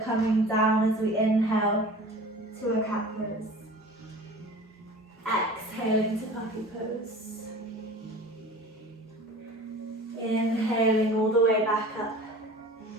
down as we inhale to a cat pose. Exhaling to puppy pose. Inhaling all the way back up.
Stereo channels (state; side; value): normal; both; correlation 0.41